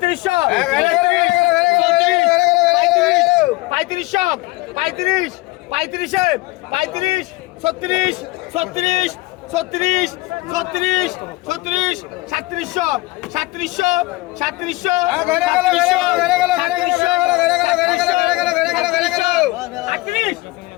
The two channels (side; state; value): right; quieter; 21.6 dB